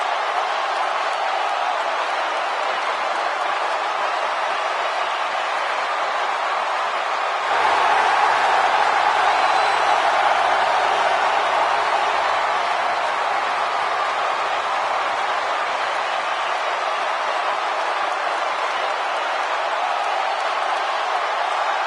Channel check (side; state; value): both; identical; correlation 1.00